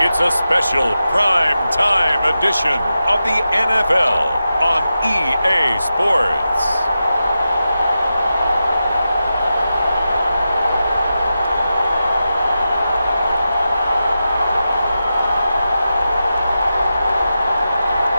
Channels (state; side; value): inverted; both; correlation -0.91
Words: it's a special prime time edition of the NFL on EA Sports.